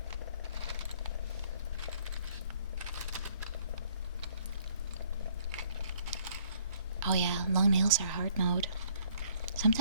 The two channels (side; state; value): both; inverted; correlation -0.61